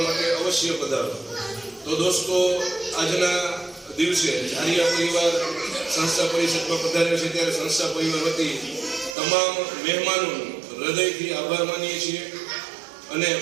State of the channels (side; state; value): left; drops out; at 9.2 s